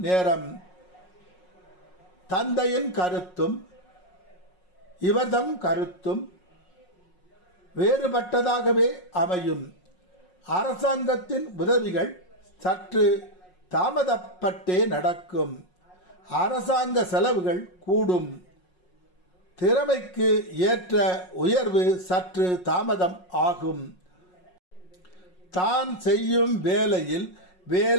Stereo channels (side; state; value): right; late; 5.5 ms